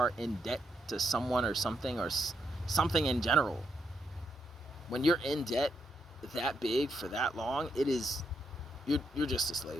in debt to someone or something in general. When you're in debt that big for that long, you're just a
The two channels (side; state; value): both; normal; correlation 0.79